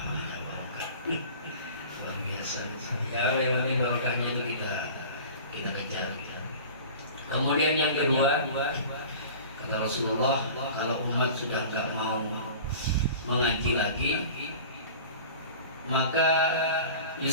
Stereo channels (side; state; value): both; inverted; correlation -0.40